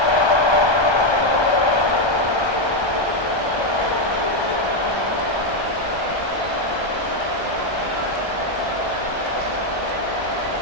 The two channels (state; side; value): late; right; 1.3 ms